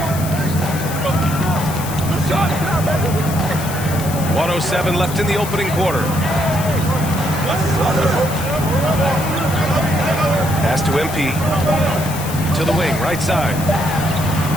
1:07 left in the opening quarter. Pass to MP. To the wing, right side.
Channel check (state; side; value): noise; left; hiss, 11 dB below the sound